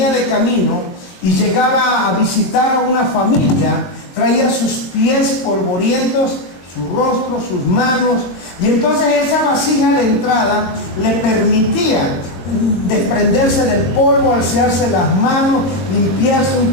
de camino y llegaba a visitar a una familia, traía sus pies polvorientos, su rostro, sus manos, y entonces esa vasija de entrada le permitía desprenderse del polvo, alzarse las manos, limpiarse un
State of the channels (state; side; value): late; right; 23 ms